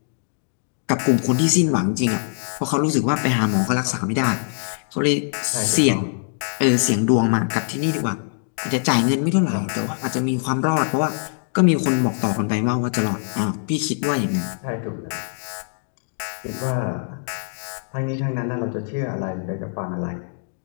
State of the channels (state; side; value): silent; right; digital silence